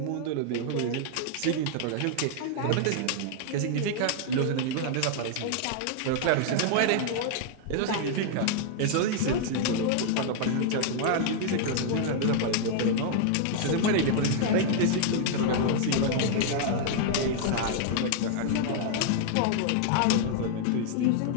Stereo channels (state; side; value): different; both; correlation 0.00